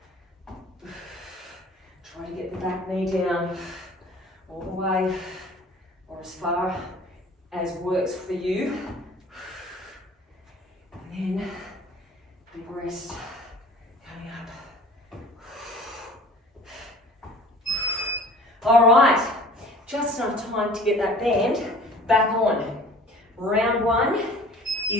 Try to get the back knee down all the way or as far as works for you. And then big rest coming up. All right, just enough time to get that band back on. Round one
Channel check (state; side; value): normal; both; correlation 0.47